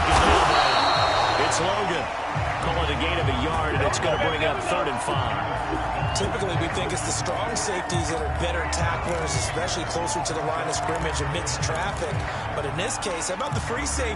down, it's Logan. Call it a gain of a yard, and it's going to bring up 3rd and 5. Typically, we think it's the strong safeties that are better tacklers, especially closer to the line of scrimmage amidst traffic. But in this case, how about the free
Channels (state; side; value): identical; both; correlation 1.00